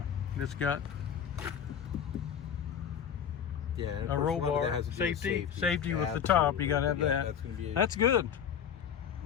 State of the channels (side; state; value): right; quieter; 8.3 dB